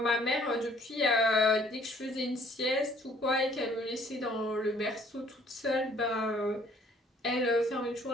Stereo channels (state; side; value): normal; both; correlation 0.59